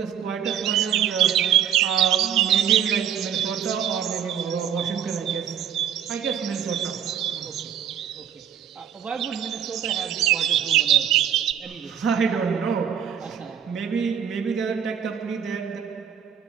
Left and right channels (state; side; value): quieter; left; 8.9 dB